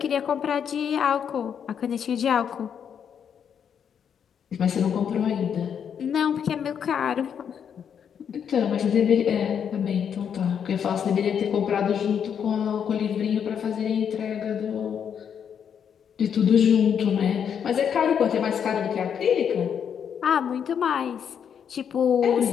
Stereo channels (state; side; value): quieter; right; 7.9 dB